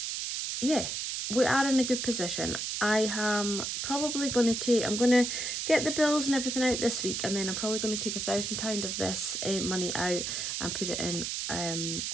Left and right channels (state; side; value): noise; right; hiss, 3 dB below the sound